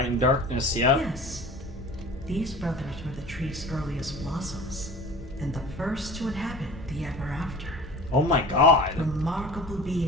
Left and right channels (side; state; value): both; normal; correlation 0.40